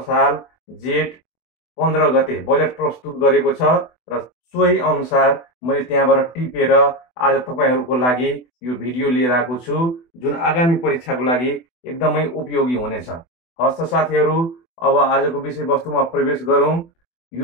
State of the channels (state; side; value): late; right; 24 ms